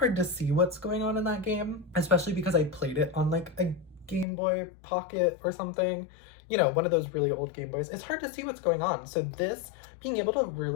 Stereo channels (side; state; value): right; drops out; at 4.2 s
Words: to see what's going on in that game, especially because I played it on like a Game Boy Pocket or something. One of those really old Game Boys. It's hard to see what's going on. So this, being able to